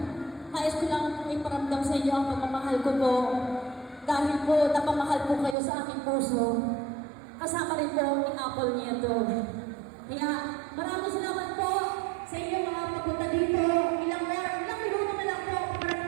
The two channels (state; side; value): drops out; left; at 5.6 s